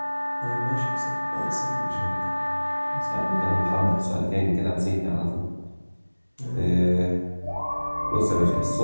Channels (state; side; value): inverted; both; correlation -1.00